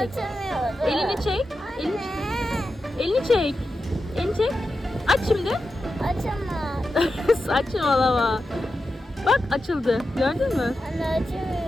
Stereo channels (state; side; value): normal; both; correlation 0.90